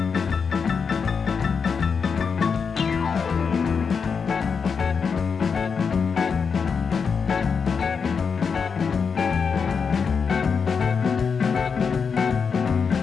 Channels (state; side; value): quieter; right; 5.9 dB